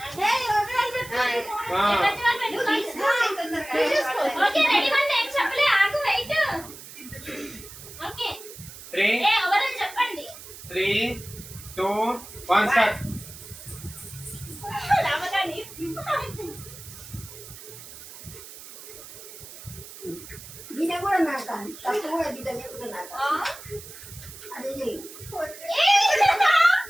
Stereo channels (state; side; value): noise; right; hiss, 15 dB below the sound